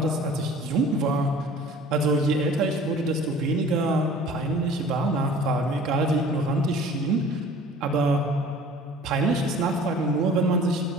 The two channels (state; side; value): normal; both; correlation 0.47